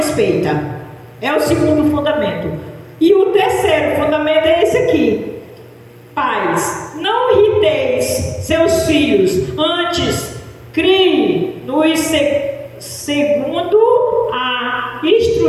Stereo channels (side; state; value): both; identical; correlation 1.00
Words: É o segundo fundamento. E o terceiro fundamento é esse aqui. Pais, não irriteis seus filhos, antes crie nos segundo a